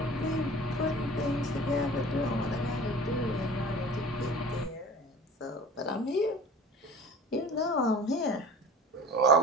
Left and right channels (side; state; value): both; normal; correlation 0.41